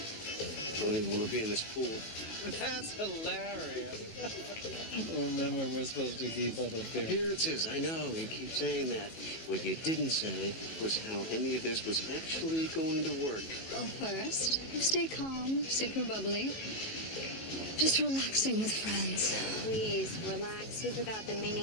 I don't even want to be in this pool. That's hilarious. Remember, we're supposed to keep up appearances. Appearances, I know. You keep saying that. What you didn't say was how any of this was actually going to work. Well, first, you stay calm, super bubbly. Just relaxing with friends. Please, relax. You forgot the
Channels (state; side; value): late; right; 18 ms